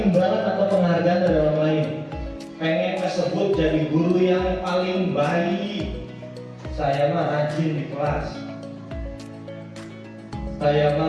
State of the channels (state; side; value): identical; both; correlation 1.00